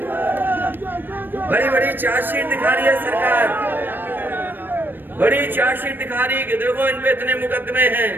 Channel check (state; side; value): late; left; 0.094 ms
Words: बड़ी बड़ी चार्जशीट दिखा रही है सरकार, बड़ी चार्जशीट दिखा रही है कि देखो इन पे इतने मुकदमे हैं।